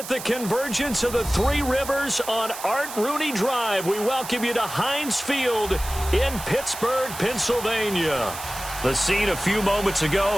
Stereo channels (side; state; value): right; noise; hiss, 11 dB below the sound